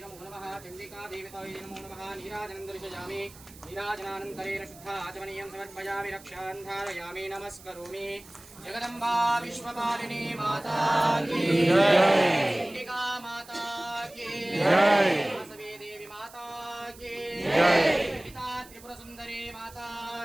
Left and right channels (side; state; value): right; noise; hiss, 21 dB below the sound